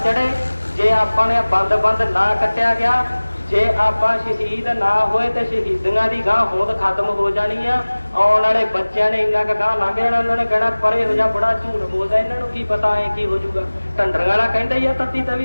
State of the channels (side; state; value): both; inverted; correlation -1.00